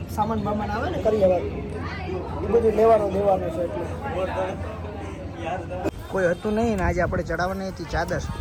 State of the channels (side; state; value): both; identical; correlation 1.00